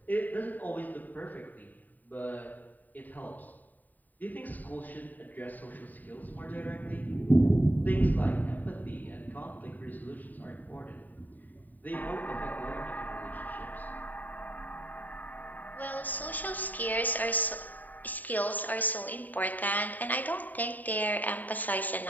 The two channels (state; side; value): late; right; 0.085 ms